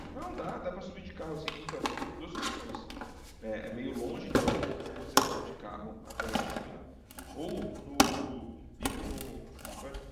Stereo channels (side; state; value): both; identical; correlation 1.00